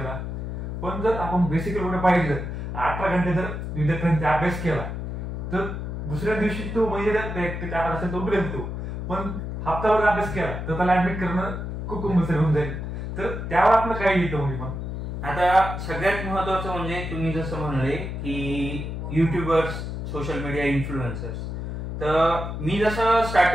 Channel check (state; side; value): noise; left; hum, 5 dB below the sound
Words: पण जर आपण बेसिक एवढं पाहिलं 18 घंटे जर विद्यार्थ्यांनी अभ्यास केला तर दुसऱ्या दिवशी तो म्हणजे असेल तो उठेल तो, पण हप्ताभर अभ्यास केला तर त्याला ऍडमिट करणं खूप कंपल्सरी होऊन जाईल. तर त्यावर आपलं काय येतं म्हणजे मग आता सगळ्यात महत्वाचं म्हणजे तुम्ही जसं म्हणले की युट्यूबर्स, सोशल मीडिया इन्फ्लुएन्सर्स, तर मी जसं